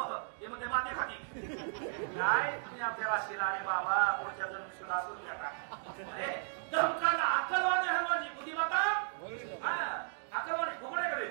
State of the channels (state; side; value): silent; left; digital silence